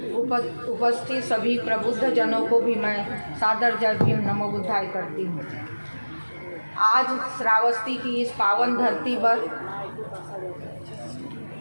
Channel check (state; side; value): inverted; both; correlation -1.00